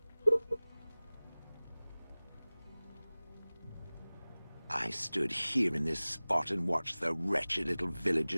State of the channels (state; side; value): inverted; both; correlation -0.99